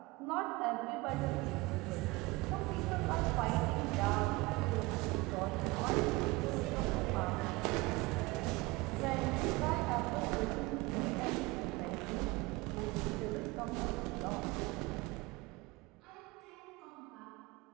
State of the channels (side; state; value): left; quieter; 22.8 dB